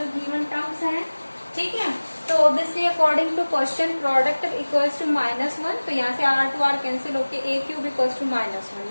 गिवन टर्म्स हैं, ठीक है। तो obviously according to question product equals to -1, तो यहाँ से आर टू आर कैंसिल होके a cube equals to -1,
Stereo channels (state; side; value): inverted; both; correlation -1.00